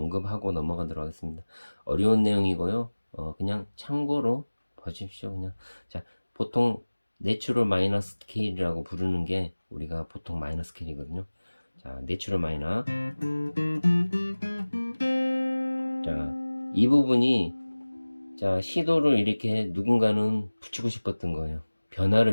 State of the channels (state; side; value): inverted; both; correlation -1.00